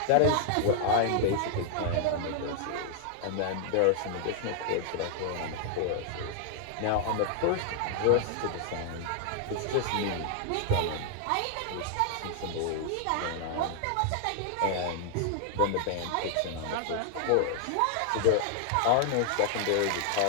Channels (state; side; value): different; both; correlation -0.01